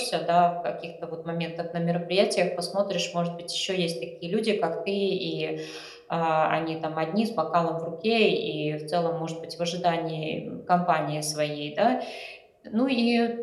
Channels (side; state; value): both; identical; correlation 1.00